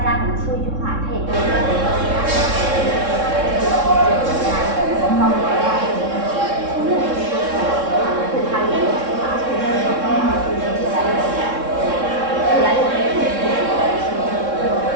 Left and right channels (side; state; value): left; late; 3.7 ms